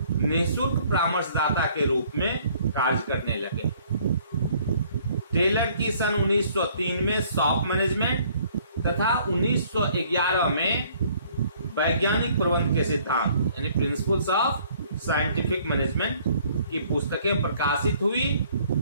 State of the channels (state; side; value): inverted; both; correlation -0.59